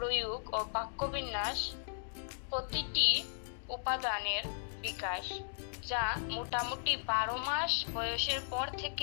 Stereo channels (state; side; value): silent; right; digital silence